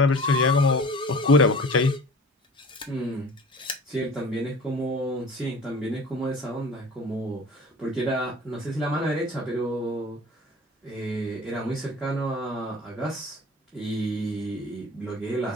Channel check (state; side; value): normal; both; correlation 0.42